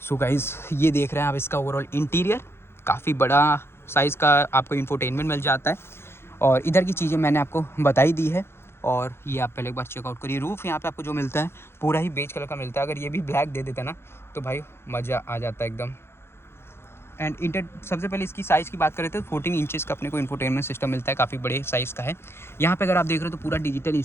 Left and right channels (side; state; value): right; late; 0.12 ms